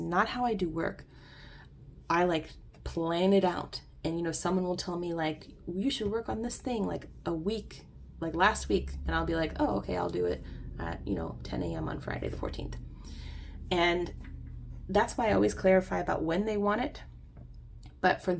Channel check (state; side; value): identical; both; correlation 1.00